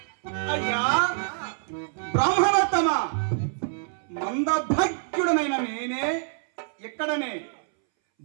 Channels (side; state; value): left; silent; 61 dB below the other